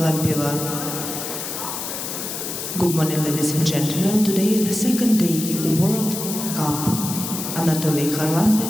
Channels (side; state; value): left; noise; hiss, 6 dB below the sound